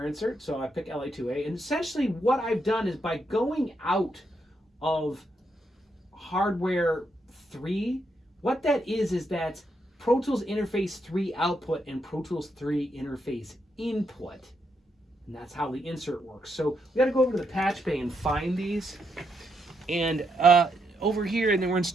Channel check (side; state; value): both; normal; correlation 0.79